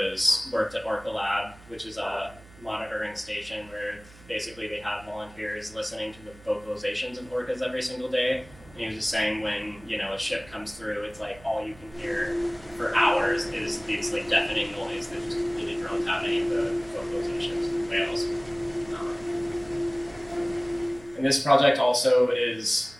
worked at Orca Lab, which is a monitoring station where basically they have volunteers listening to the vocalizations of orcas every single day. And he was just saying when, you know, a ship comes through, it's like all you can hear for hours is these like deafening noise that just completely drones out any of the vocalizations of the whales. And this project also is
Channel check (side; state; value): right; noise; hum, 22 dB below the sound